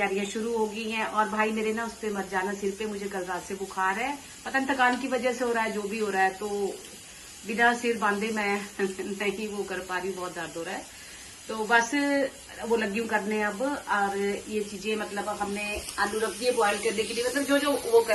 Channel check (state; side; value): identical; both; correlation 1.00